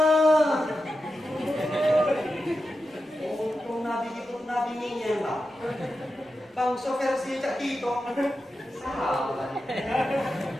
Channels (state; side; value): normal; both; correlation 0.90